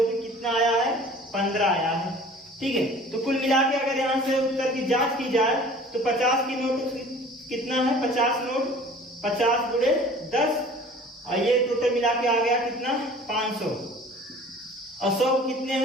कि कितना आया है 15 आया है। ठीक है, तो कुल मिला के अगर यहाँ से उत्तर की जांच की जाए तो 50 की नोट कितना है 50 नोट 50 गुणे 10, और ये टोटल मिला के आ गया कितना 500, और 100 कितने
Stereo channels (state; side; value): normal; both; correlation 0.47